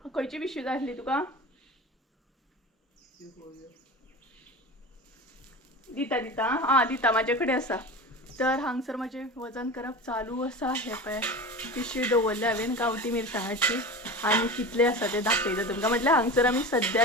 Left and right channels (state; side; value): normal; both; correlation 0.31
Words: खंयची पिशवी जाय आसली तुका? दिता दिता आं दिता म्हाजे कडेन आसा. तर हांगसर म्हजें वजन करप चालू आसा. हे पळय पिशवी दवरल्या हांवें गांवठी मिरसांगाची आनी कितले आसा ते दाखयता तुमकां. म्हटल्यार हांगसर आमी